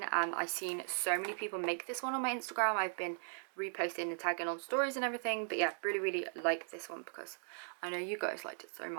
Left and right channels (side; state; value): left; silent; digital silence